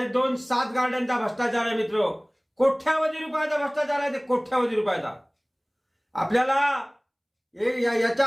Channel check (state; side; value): identical; both; correlation 1.00